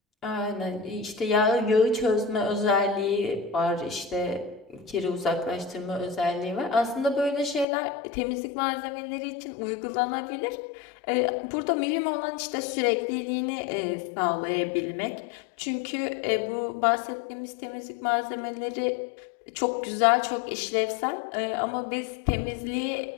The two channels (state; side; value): drops out; right; at 7.7 s